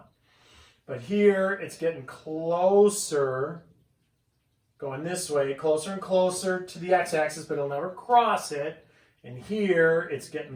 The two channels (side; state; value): both; identical; correlation 1.00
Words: But here, it's getting closer, going this way, closer and closer to the x-axis, but it'll never cross it. And here, it's